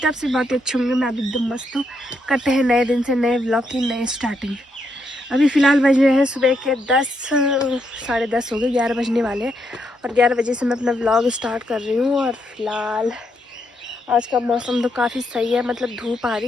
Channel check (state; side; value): normal; both; correlation 0.78